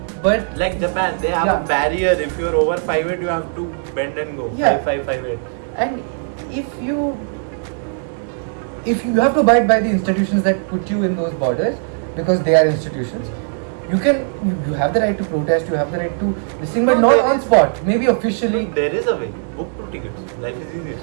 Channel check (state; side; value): silent; left; 66 dB below the other